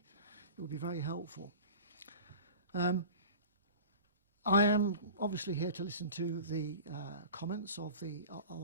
it would be very helpful. I am obviously here to listen to the comments of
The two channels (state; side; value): inverted; both; correlation -0.37